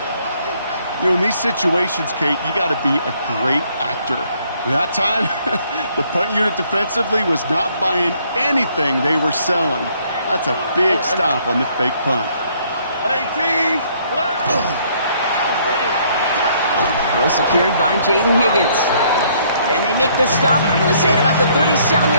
You know, in these situations, Kate, you got to be a great actor. That time, the punt unit defensively was not buying anything they were selling. That's a big stop on the fake punt. 18. Throw secured by Jaden Higgins. And they make the stop, we're going to say, at about the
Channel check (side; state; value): both; inverted; correlation -0.65